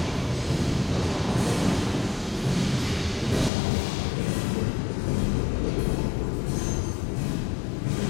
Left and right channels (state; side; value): drops out; right; at 3.5 s